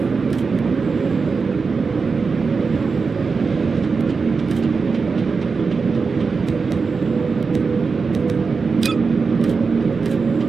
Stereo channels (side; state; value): left; quieter; 4.8 dB